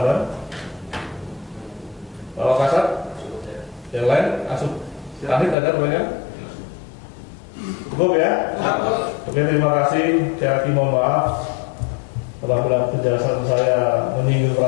Pak Kasat? Yang lain? Asup? Tadi ada pertanyaan? Cukup ya? Oke, terima kasih. Saya lagi mohon maaf apabila penjelasan saya menyinggung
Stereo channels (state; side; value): drops out; right; at 5.6 s